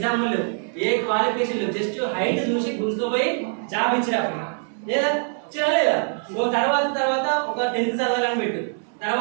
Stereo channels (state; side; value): silent; left; 60 dB below the other